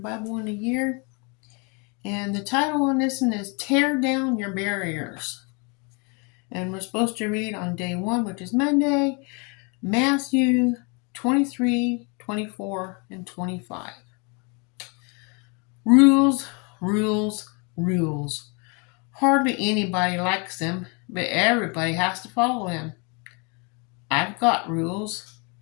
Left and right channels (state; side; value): quieter; right; 32.7 dB